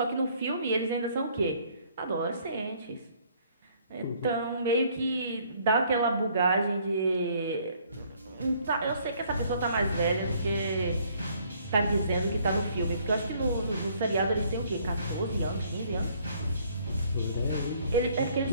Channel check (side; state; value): both; inverted; correlation -0.62